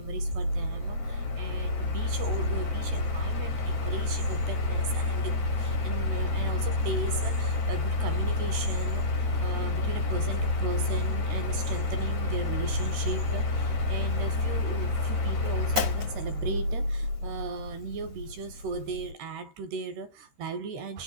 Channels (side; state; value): left; late; 13 ms